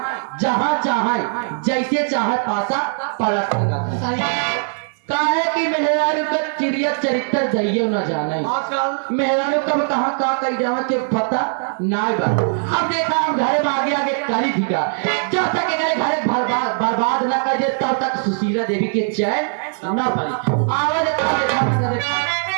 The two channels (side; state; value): left; silent; 66 dB below the other